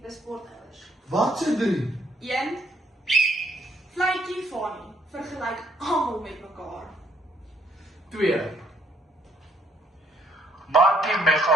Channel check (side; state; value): both; normal; correlation 0.69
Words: sportouers. Wat se 3? 1. Vletjie Fanny, vergelyk almal met mekaar. 2. Markie